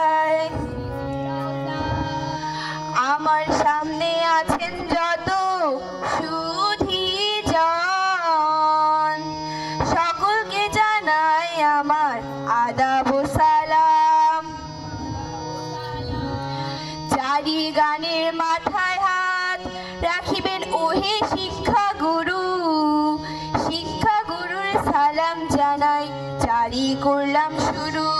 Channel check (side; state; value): both; identical; correlation 1.00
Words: আমার সামনে আছেন যত সুধীজন, সকলকে জানাই আমার আদাব ও সালাম। চারি গানের মাথায় হাত রাখিবেন ওহে শিক্ষা গুরু, শিক্ষা গুরুর সালাম জানাই জারি করলাম শুরু।